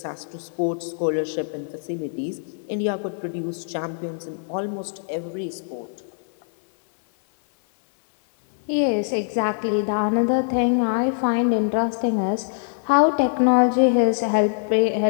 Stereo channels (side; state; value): right; silent; 58 dB below the other